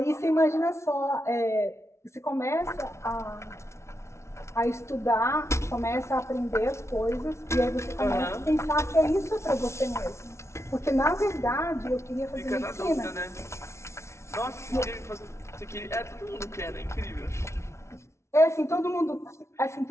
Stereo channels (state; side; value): late; right; 0.13 ms